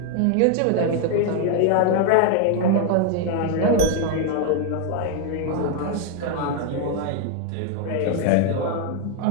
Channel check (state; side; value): different; both; correlation 0.01